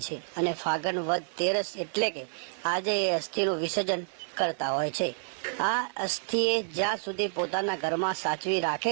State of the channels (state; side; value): silent; left; digital silence